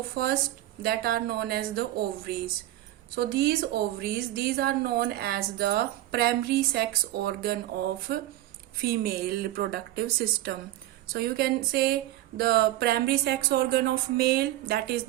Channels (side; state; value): left; quieter; 14.8 dB